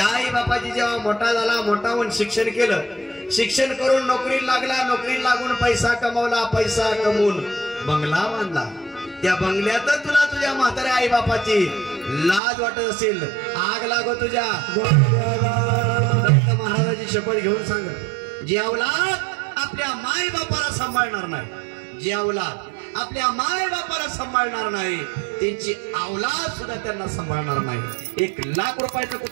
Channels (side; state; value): left; drops out; at 12.4 s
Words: आई बापाची जेव्हा मोठा झाला, मोठा होऊन शिक्षण केलं, शिक्षण करून नोकरी लागला, नोकरी लागून पैसा कमवला, पैसा कमवून बंगला बांधला. त्या बंगल्यात तुला तुझ्या म्हाताऱ्या आई बापाची लाज वाटत असेल, आग लागो तुझ्या. दत्त महाराजाची शपथ घेऊन सांग, जी अवलाद आपल्या माय बापाला सांभाळणार नाही, जी अवलाद आपल्या माय बापाला सांभाळणार नाही, त्यांची अवलाद सुद्धा त्यांना सांभाळणार नाही. 1 लाख रुपयाचं